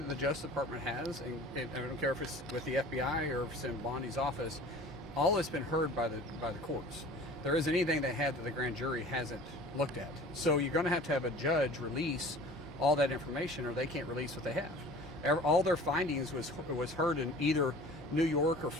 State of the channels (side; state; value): both; normal; correlation 0.44